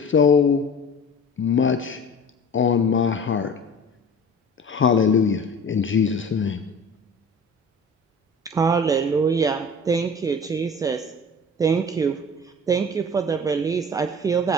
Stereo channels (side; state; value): both; normal; correlation 0.40